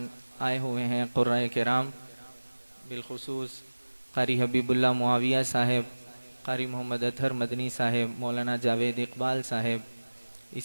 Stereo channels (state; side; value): inverted; both; correlation -1.00